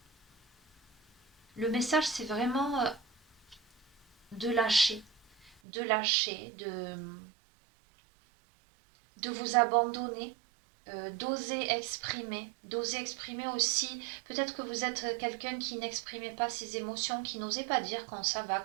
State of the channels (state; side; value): drops out; left; at 5.6 s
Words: Le message c'est vraiment de lâcher, de lâcher, de vous abandonner, d'oser exprimer aussi, peut-être que vous êtes quelqu'un qui n'exprimait pas ses émotions, qui n'osait pas dire quand ça va